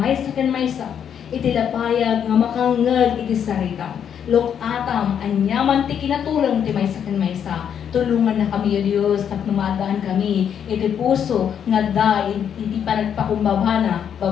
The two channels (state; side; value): quieter; right; 8.4 dB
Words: ken maysa iti lapayag nga makangag iti sarita. Lok atam, anyaman ti kinatulong ti maysa ken maysa. Tulungan na kami o Diyos, kat numadaan kami, iti puso, nga da, iti panagpakumbabana,